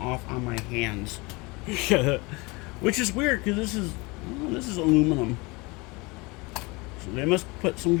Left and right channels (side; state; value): right; quieter; 25.8 dB